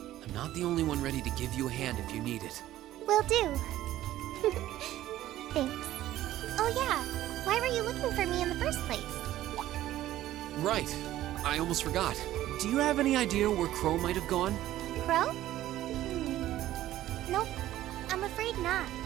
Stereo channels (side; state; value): left; quieter; 14.1 dB